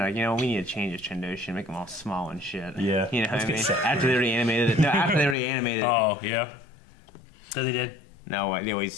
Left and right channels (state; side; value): drops out; right; at 5.4 s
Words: we need to change his Trandoshia, make him all small and shit. Yeah. You know what Let's I get mean? Seth After they already animated it. No, after they already animated it. Oh, yeah. So they did. No, they